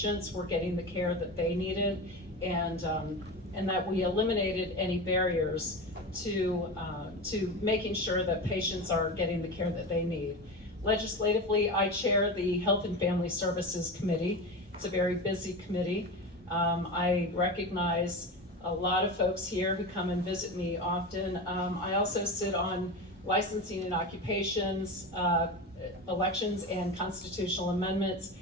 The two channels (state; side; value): normal; both; correlation 0.25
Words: were getting the care that they needed, and that we eliminated any barriers to making sure that patients are getting the care that they need. Legislatively, I chair the Health and Family Services Committee. It's a very busy committee. I recognize a lot of folks here who come and visit me often. I also sit on licensing and occupations, elections and constitutional amendments,